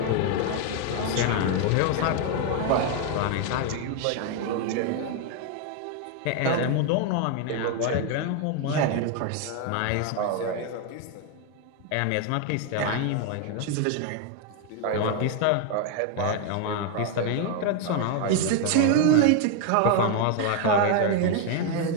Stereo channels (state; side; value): different; both; correlation 0.01